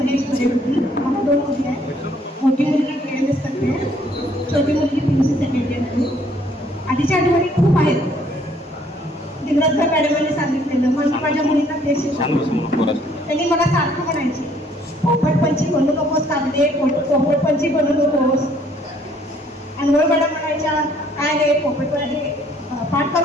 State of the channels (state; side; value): normal; both; correlation 0.63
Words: मध्ये होती. मला 2 मुली आहेत. मोठी मुलगी PMS करते, छोटी मुलगी PUC सेकंड इयर मध्ये. आधीच्या आठवणी खूप आहेत. दिग्रजकर मॅडमांनी सांगितलेलं मग मी माझ्या मुलींना तेच शिकवलं. त्यांनी मला सारखं म्हणायची पोपटपंची बनू नकोस कागदे, पोपटपंची बनू नकोस. अनवळ मॅडम म्हणायच्या काय रे पोपट हे पाठ